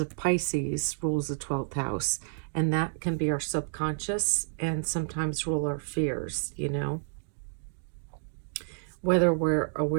Pisces rules the 12th house, and that can be our subconscious and sometimes rule our fears, whether we're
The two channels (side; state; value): left; silent; digital silence